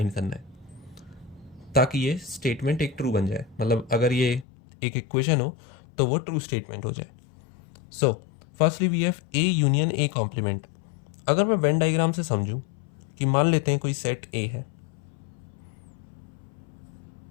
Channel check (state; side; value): drops out; right; at 4.5 s